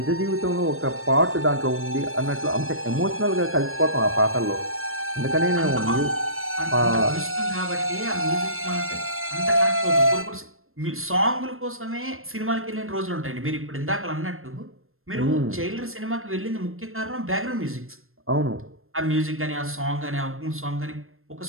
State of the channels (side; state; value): left; late; 0.61 ms